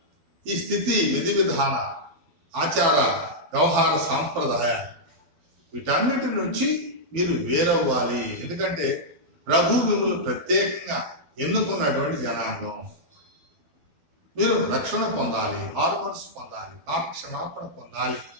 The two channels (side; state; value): left; late; 12 ms